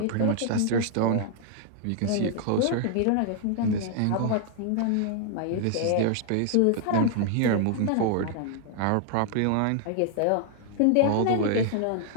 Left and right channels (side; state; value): both; different; correlation 0.00